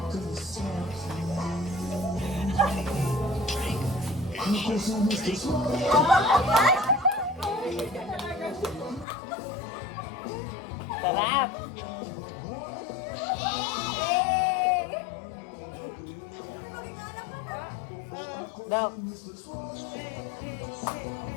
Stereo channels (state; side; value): drops out; right; at 9.1 s